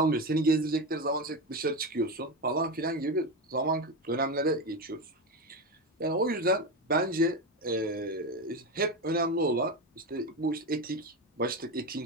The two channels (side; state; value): both; normal; correlation 0.17